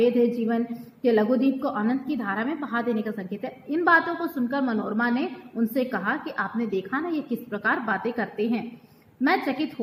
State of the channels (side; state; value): both; identical; correlation 1.00